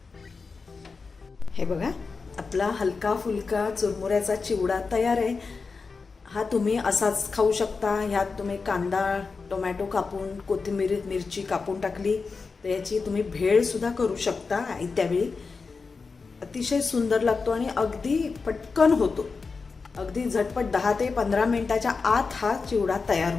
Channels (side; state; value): right; quieter; 4.6 dB